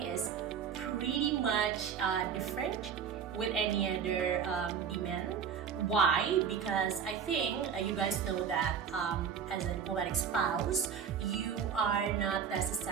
is pretty much different with any other demand. Why? Because I think you guys know that as a diplomatic spouse, you are not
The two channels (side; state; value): left; quieter; 7.4 dB